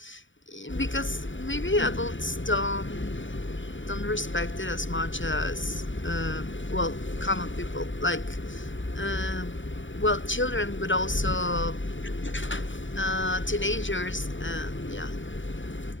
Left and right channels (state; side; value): late; right; 0.55 ms